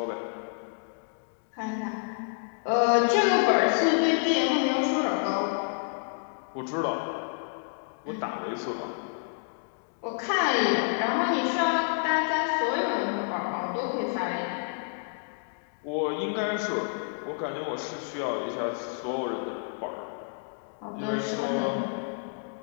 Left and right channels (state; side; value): silent; right; 59 dB below the other